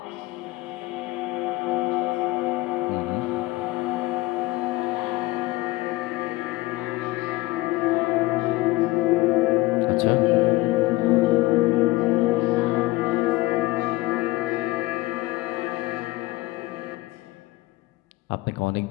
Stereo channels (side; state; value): right; quieter; 20.2 dB